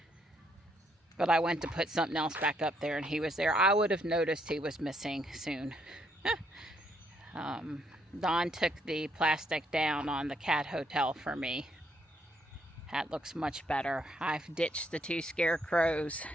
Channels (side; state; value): both; normal; correlation 0.73